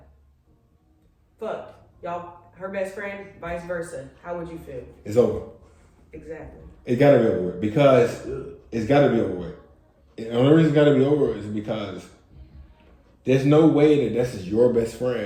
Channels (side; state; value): both; identical; correlation 1.00